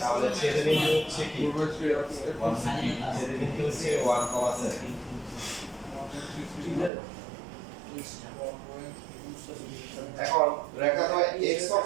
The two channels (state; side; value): drops out; left; at 6.9 s